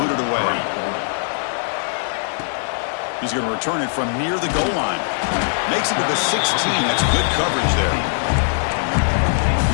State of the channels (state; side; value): silent; right; 65 dB below the other